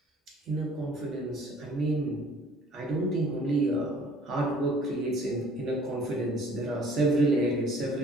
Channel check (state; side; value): normal; both; correlation 0.54